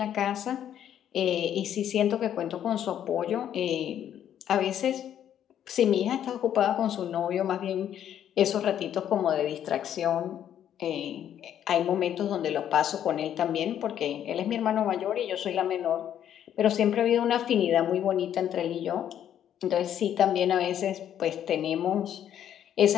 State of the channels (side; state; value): right; quieter; 10.2 dB